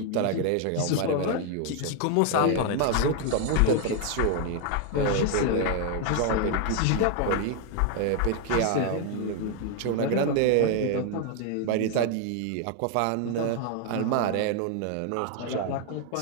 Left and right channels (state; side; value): different; both; correlation 0.01